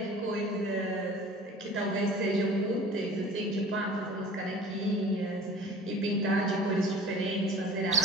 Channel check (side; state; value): both; normal; correlation 0.43